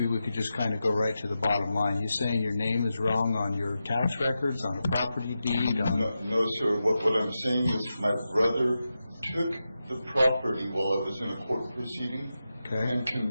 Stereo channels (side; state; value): both; inverted; correlation -0.90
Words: we could just kind of go right to the bottom line. You saying your name is wrong on your tax records, on a property deed? No, sir, what I'm saying is my brother took the property while I was in a court proceeding. Okay. and